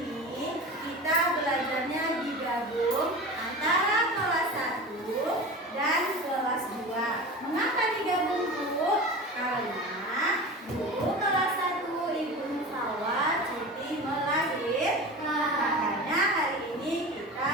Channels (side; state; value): both; normal; correlation 0.32